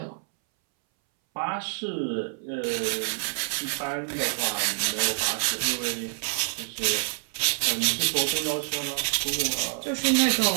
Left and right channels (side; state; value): left; silent; 60 dB below the other